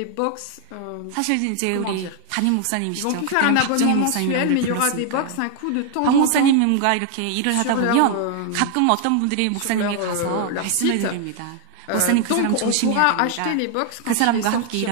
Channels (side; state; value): both; different; correlation 0.00